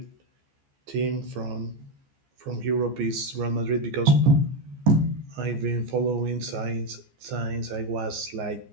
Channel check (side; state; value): left; late; 14 ms